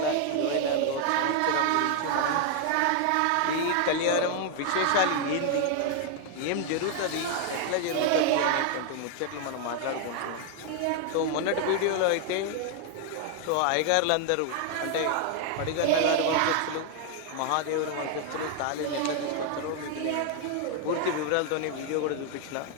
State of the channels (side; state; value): both; different; correlation 0.00